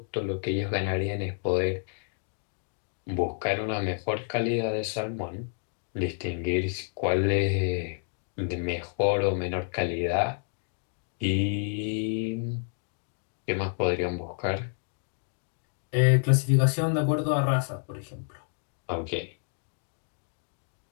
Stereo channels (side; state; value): right; silent; digital silence